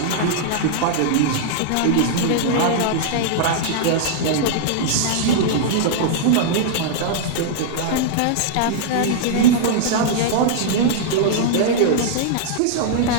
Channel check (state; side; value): different; both; correlation -0.01